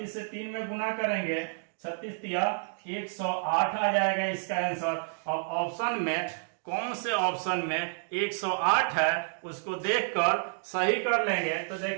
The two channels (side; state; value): left; silent; digital silence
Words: से 3 में गुना करेंगे, 36 तिया 108 आ जाएगा इसका आंसर। अब ऑप्शन में कौन से ऑप्शन में 108 है उसको देखकर सही कर लेंगे। तो